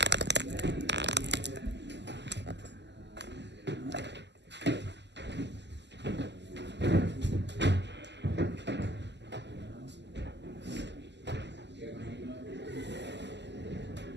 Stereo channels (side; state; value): left; late; 0.51 ms